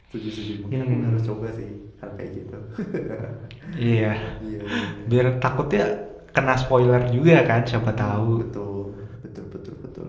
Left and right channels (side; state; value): both; identical; correlation 1.00